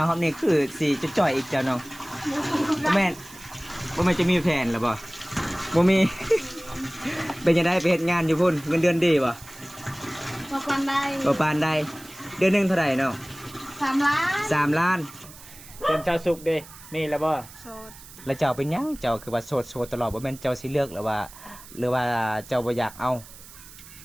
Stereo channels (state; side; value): noise; right; hiss, 18 dB below the sound